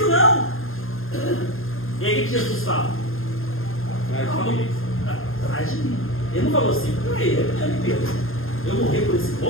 não. E aí o que Jesus fala? Atrás de mim. Ele não falou assim: Pedro, eu morrer por esse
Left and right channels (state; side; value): late; right; 0.60 ms